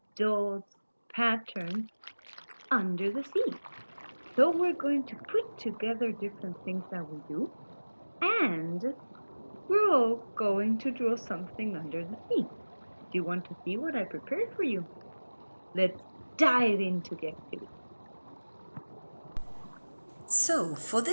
dots, patterns under the sea. So we're going to put together different things that we do, and we're all going to draw something under the sea. Do you want to see what I prepared for you? Let's dive into the activity. So, for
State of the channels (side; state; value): both; inverted; correlation -1.00